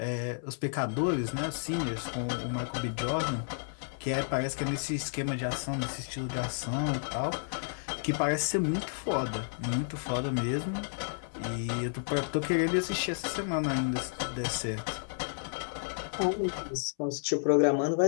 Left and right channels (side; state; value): right; silent; 57 dB below the other